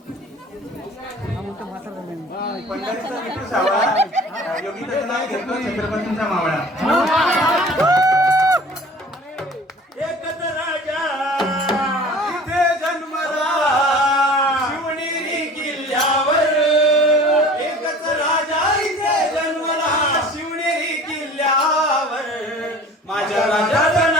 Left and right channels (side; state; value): both; normal; correlation 0.44